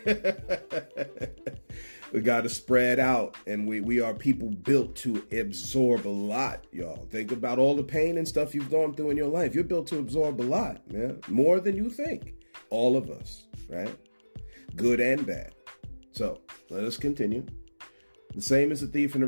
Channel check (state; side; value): inverted; both; correlation -1.00